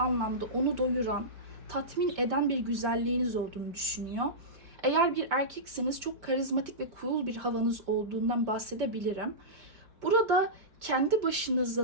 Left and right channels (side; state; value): left; late; 4.7 ms